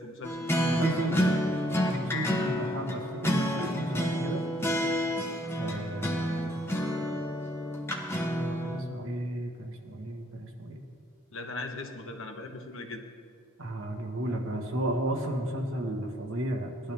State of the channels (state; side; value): normal; both; correlation 0.67